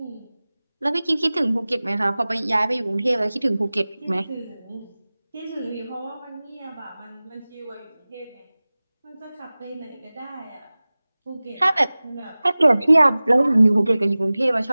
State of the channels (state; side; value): inverted; both; correlation -0.98